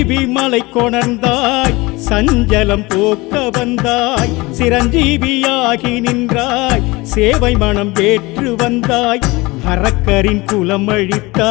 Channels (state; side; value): quieter; right; 22.5 dB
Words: மலை கொணர்ந்தாய், சஞ்சலம் போக்க வந்தாய், சிரஞ்சீவியாகி நின்றாய், சேவை மனம் ஏற்று வந்தாய், அரக்கரின் குலம்